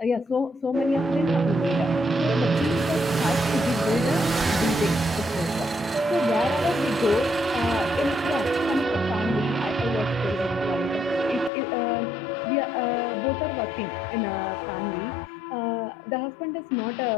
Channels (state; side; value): drops out; right; at 11.5 s